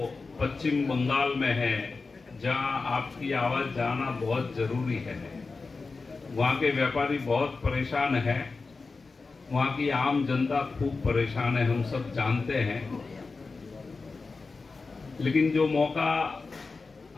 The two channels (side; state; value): right; quieter; 4.1 dB